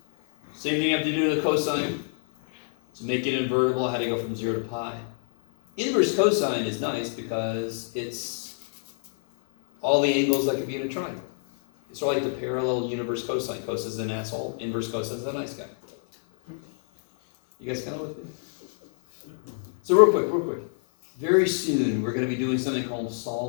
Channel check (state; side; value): silent; right; 61 dB below the other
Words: Same thing I have to do to the cosine. To make it invertible, I had to go from 0 to pi. Inverse cosine is nice because it's all the angles that could be in a triangle. It's sort of like the parallel universe cosine. Cos is an asshole. Inverse cosine is a nice guy. You guys kind of with me? So real quick. Very soon, we're going to be doing something called